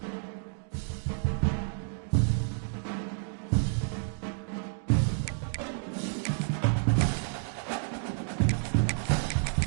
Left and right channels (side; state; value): left; silent; digital silence